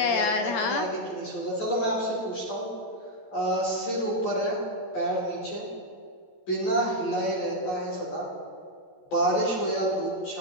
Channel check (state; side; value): late; right; 14 ms